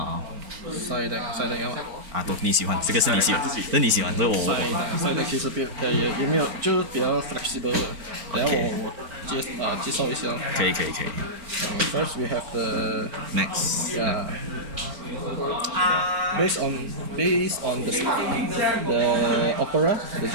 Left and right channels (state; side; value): late; left; 4.4 ms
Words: side deck 要吗？都你喜欢，这个是你喜欢，这是你喜欢，这我 side deck 其实也没有，就是比较 flexible 的。等下我介绍一下。可以。First we have the Max. Based on the opera, the